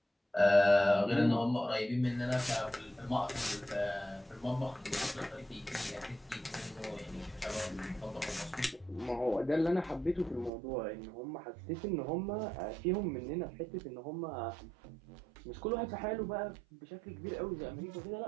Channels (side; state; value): left; drops out; at 10.5 s